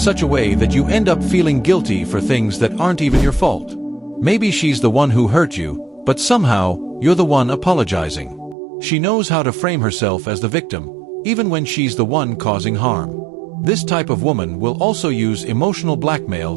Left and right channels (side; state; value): left; drops out; at 8.6 s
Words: a way that you end up feeling guilty for things that aren't even your fault. Maybe she's the one who hurt you, but somehow, you're the one apologizing. She knows how to frame herself as the victim, even when she's the one causing harm. This type of woman will also use emotional blackmail